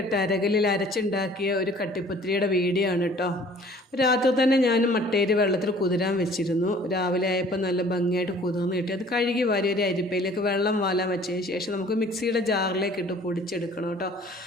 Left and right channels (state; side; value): normal; both; correlation 0.52